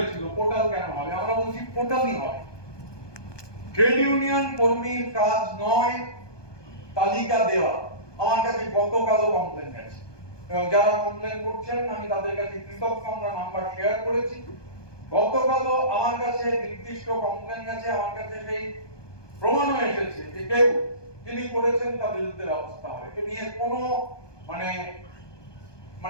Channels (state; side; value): late; right; 1.2 ms